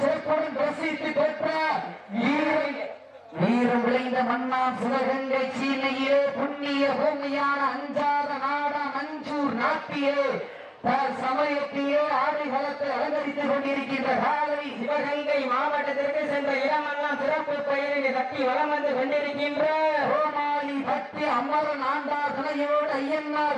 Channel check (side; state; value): both; identical; correlation 1.00